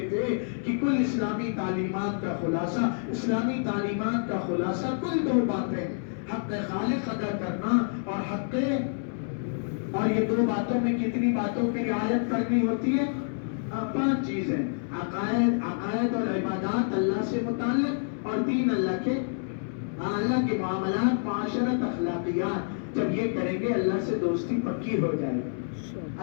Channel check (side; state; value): right; silent; digital silence